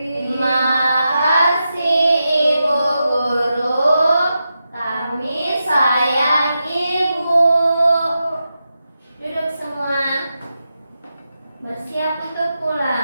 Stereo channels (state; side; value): inverted; both; correlation -0.89